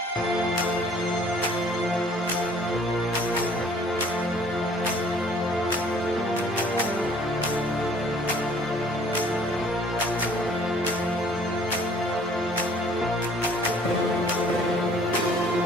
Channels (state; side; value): normal; both; correlation 0.56